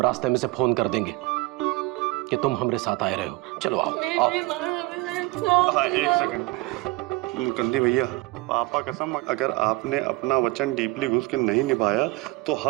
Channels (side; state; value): left; quieter; 21.5 dB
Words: रास्ते में से फोन कर देंगे कि तुम हमारे साथ आए रहे हो। चलो आओ आओ। एक सेकंड मुकंदी भैया, पापा कसम, अगर आपने अपना वचन डीपली घुस के नहीं निभाया तो